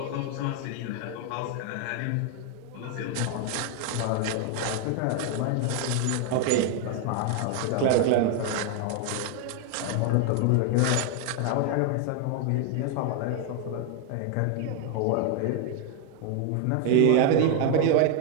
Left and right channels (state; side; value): different; both; correlation 0.00